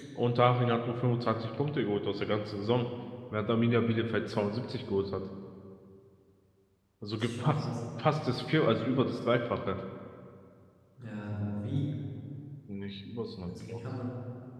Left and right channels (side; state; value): both; identical; correlation 1.00